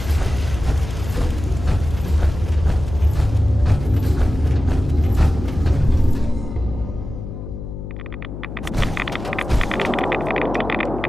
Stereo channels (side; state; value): left; noise; hum, 9 dB below the sound